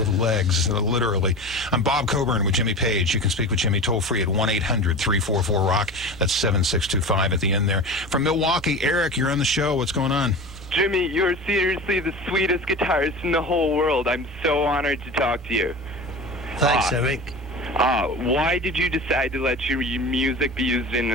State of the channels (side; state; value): both; normal; correlation 0.31